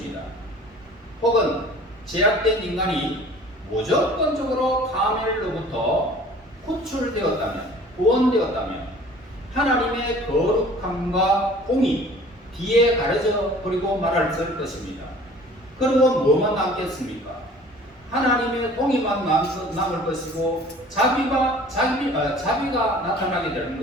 혹은 제약된 인간이 무조건적으로 파멸로부터 구출되었다면 구원되었다면 하나님의 거룩함과 공의 뒤에 가려져 버리고 말할 것입니다. 그리고 뭐만 남겠습니까? 하나님의 공의만 남을 것이고 자비가 나타나게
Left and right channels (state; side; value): normal; both; correlation 0.48